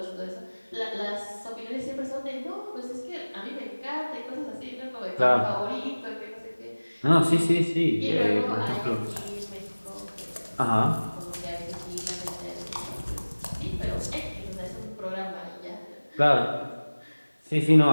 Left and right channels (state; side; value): inverted; both; correlation -1.00